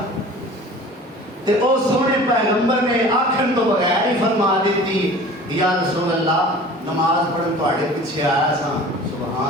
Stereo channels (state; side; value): normal; both; correlation 0.42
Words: تے او سونے پیغمبر نے آکھن تو بغیر ہی فرما دیتی یا رسول اللہ نماز پڑھن تواڈے پیچھے آیا سا